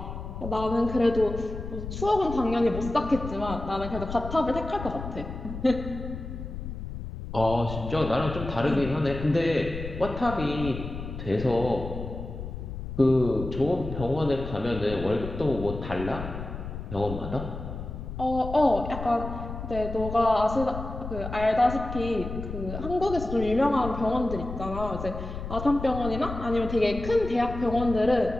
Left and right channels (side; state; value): left; noise; rumble, 8 dB below the sound